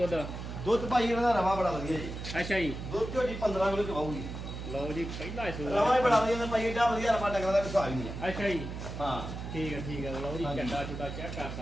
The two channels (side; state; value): right; noise; hum, 7 dB below the sound